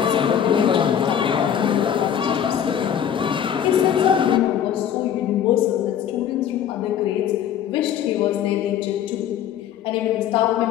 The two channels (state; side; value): quieter; right; 9.4 dB